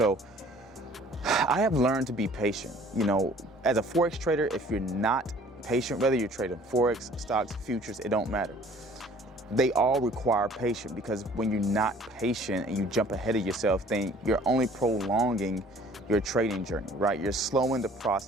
I have learned to be patient. You know, as a Forex trader, if you're not patient, whether you're trading Forex, stocks, futures, it don't matter. They all require patience, because when you're not patient and you jump ahead of yourself, then you're only prolonging your trading journey, right? You're slowing the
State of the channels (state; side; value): normal; both; correlation 0.53